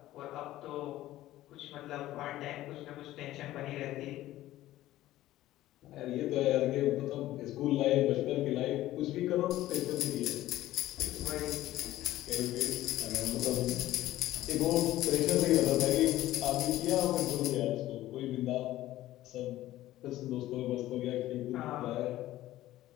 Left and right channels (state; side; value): quieter; right; 15.1 dB